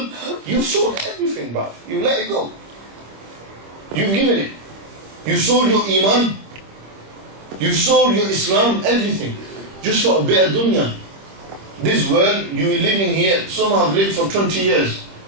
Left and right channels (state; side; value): late; left; 25 ms